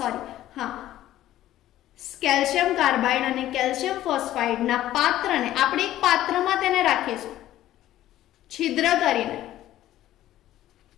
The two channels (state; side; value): quieter; right; 13.7 dB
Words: હા, કેલ્શિયમ કાર્બાઇડ અને કેલ્શિયમ ફોસ્ફાઇડના પાત્રને આપણે એક પાત્રમાં તેને રાખીશું છિદ્ર કરીને